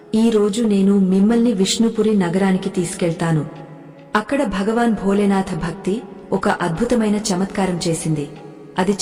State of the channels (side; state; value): both; identical; correlation 1.00